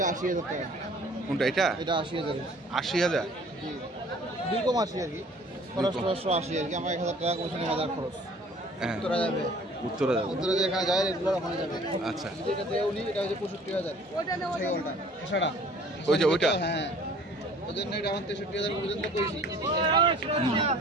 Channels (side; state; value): both; normal; correlation 0.52